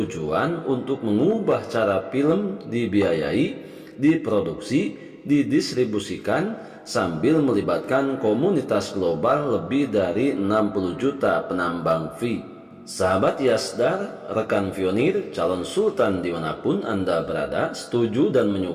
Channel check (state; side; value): identical; both; correlation 1.00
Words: untuk mengubah cara film dibiayai, diproduksi, didistribusikan sambil melibatkan komunitas global lebih dari 60 juta penambang fee. Sahabat Yasdar, rekan pionir, calon sultan dimanapun Anda berada, setuju dan